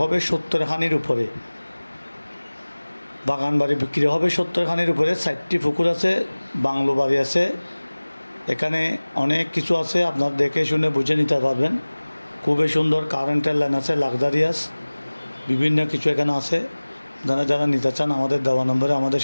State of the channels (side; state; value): both; inverted; correlation -1.00